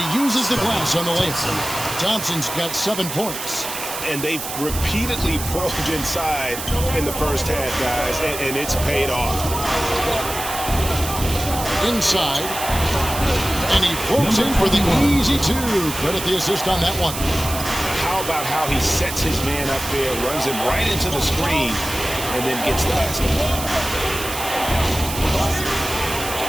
uses the glass on the layup. Thompson's got 7 points. And they've repeatedly probed inside in the first half, guys, and it's paid off. Inside. And he floats in for the easy 2. Credit the assist on that one. How about how he sets his man up there, runs him right into the screen, and then gets the basket.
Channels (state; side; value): noise; right; hiss, 7 dB below the sound